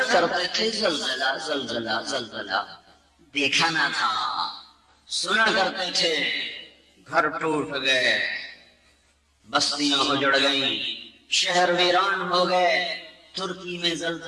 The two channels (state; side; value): identical; both; correlation 1.00